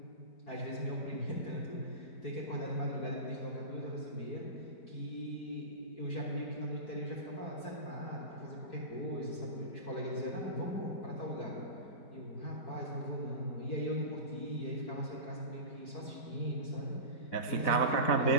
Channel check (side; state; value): right; late; 4.6 ms